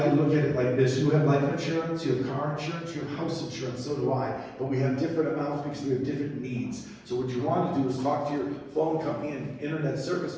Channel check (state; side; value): identical; both; correlation 1.00